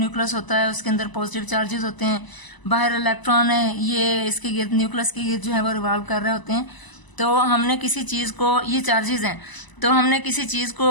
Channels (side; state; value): right; late; 1.0 ms